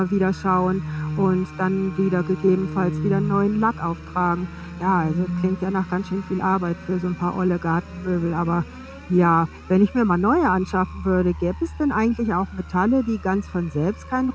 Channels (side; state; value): both; identical; correlation 1.00